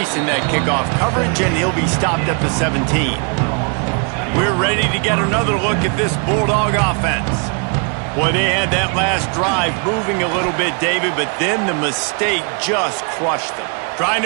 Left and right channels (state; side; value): quieter; left; 37.6 dB